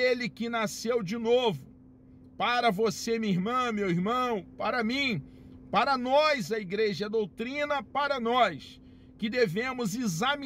que nasceu de novo, para você, minha irmã, meu irmão, para mim, para nós, a igreja, a doutrina, para nós, que devemos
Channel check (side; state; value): both; identical; correlation 1.00